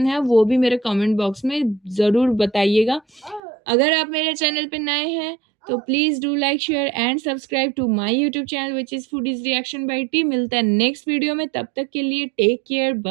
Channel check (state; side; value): drops out; left; at 3.4 s